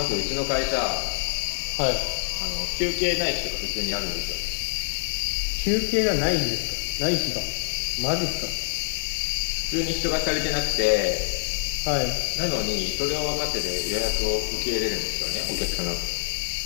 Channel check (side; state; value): right; silent; digital silence